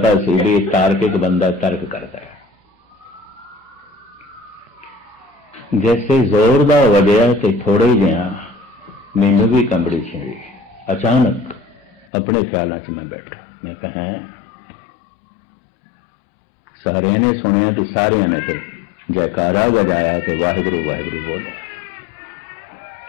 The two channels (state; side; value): drops out; right; at 12.1 s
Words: सी भी तार्किक बंदा तर्क करता है। जैसे जोर दा वजया तो थोड़े ही जिहा मैनू भी कंबड़ी छिड़ी। अचानक अपने ख्यालों च मैं बैठा, मैं कहा सारे ने सुनिया तो सारे ने तो जयकारा बजाया तो वाहिगुरू वाहिगुरू बोलो।